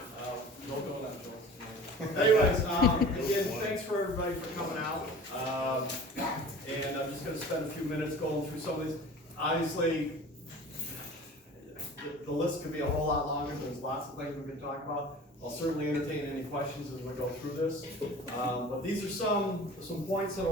No going on, Joel. Anyways, again, thanks for everybody for coming out. And I'm just gonna spend a few minutes going through some of these. Obviously, the list could be a whole lot longer. There's lots of things we can talk about. I'll certainly entertain any questions as we go through this. But these are some points that I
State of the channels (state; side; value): normal; both; correlation 0.42